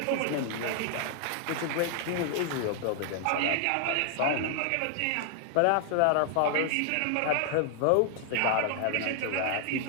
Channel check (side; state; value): both; different; correlation 0.00